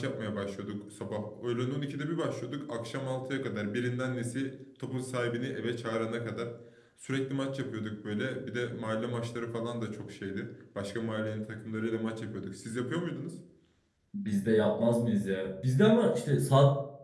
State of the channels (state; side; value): identical; both; correlation 1.00